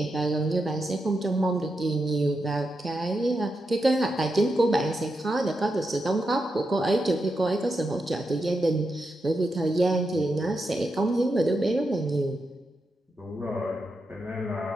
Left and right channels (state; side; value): normal; both; correlation 0.86